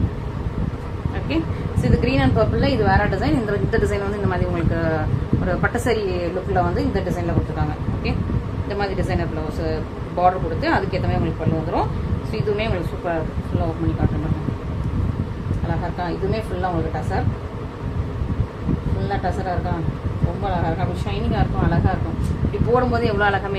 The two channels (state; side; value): identical; both; correlation 1.00